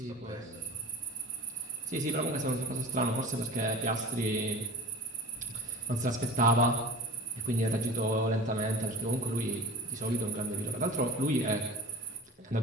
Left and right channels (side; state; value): both; normal; correlation 0.35